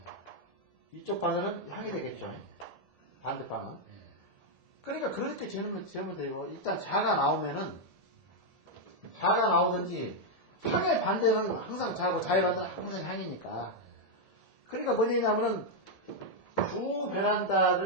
이쪽 바늘은 향이 되겠죠? 반대방은. 그러니까 그렇게 재면 되고, 일단 자가 나오든지, 향의 반대는 항상 자고, 자의 반대는 항상 향이니까. 그러니까 뭔 얘기냐면은, 주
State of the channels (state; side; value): late; left; 1.7 ms